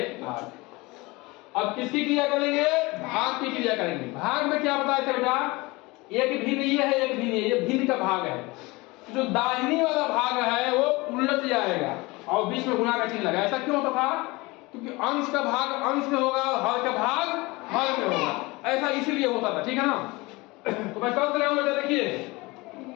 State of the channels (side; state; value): right; quieter; 23.2 dB